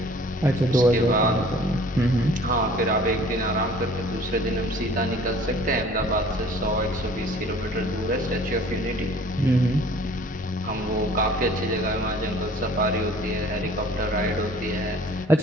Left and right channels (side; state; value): both; normal; correlation 0.51